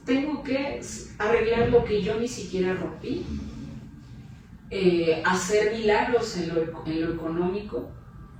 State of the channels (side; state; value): both; identical; correlation 1.00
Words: tengo que arreglar lo que yo ni siquiera rompí, hacer milagros en lo económico